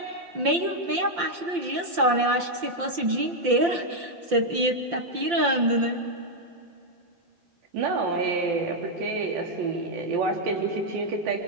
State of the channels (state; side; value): late; left; 5.8 ms